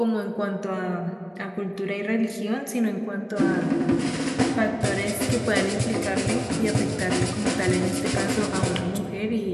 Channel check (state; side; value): identical; both; correlation 1.00